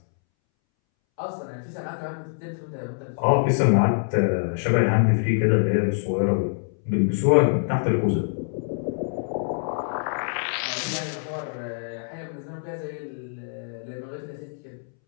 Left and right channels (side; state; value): right; silent; 62 dB below the other